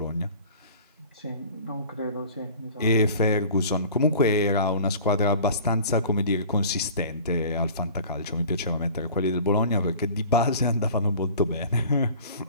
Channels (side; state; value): both; inverted; correlation -0.44